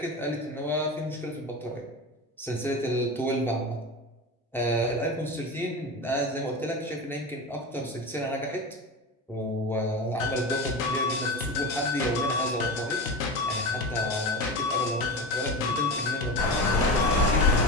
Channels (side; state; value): both; normal; correlation 0.25